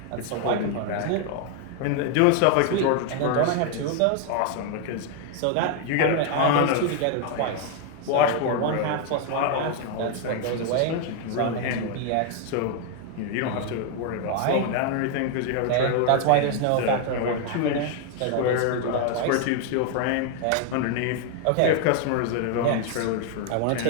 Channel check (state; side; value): different; both; correlation 0.00